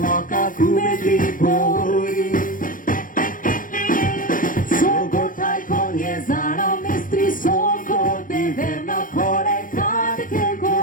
come di poi Sogo tai con esana mestri sogo de verna core cade che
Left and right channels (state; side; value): late; right; 0.39 ms